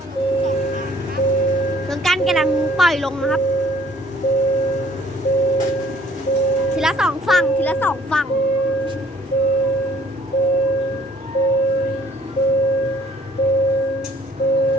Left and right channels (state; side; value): normal; both; correlation 0.58